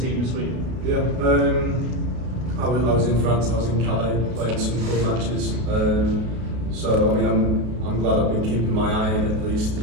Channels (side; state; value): left; late; 33 ms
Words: team this week. Yeah, I was in France. I was in Calais playing some club matches. So I mean, I'm glad I've been keeping my eye in at least,